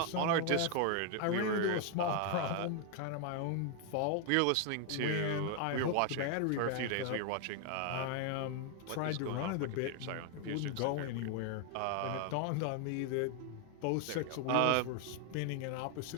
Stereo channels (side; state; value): both; different; correlation 0.00